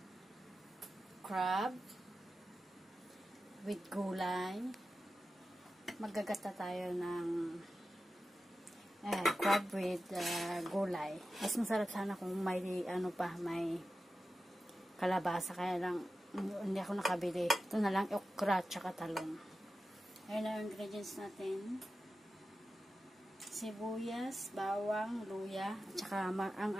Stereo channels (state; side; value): normal; both; correlation 0.92